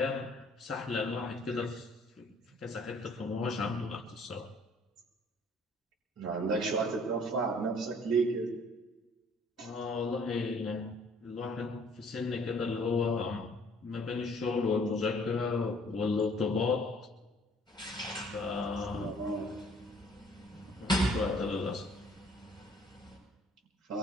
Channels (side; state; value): both; normal; correlation 0.57